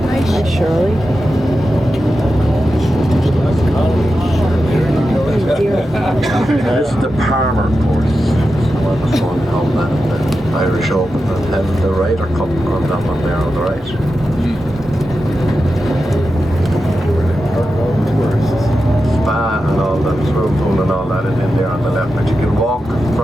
Shirley. This is the Palmer course. So I was going home that the Irish Open and held the Ryder Cup on that one there on the right. Spa and all that, swimming pool and all that is in there on the left, but you can walk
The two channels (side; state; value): both; normal; correlation 0.90